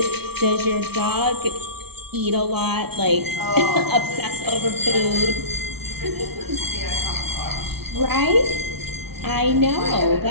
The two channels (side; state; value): left; late; 0.97 ms